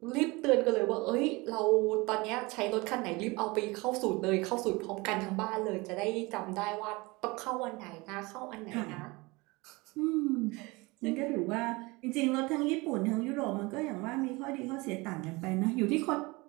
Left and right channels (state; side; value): quieter; left; 24.2 dB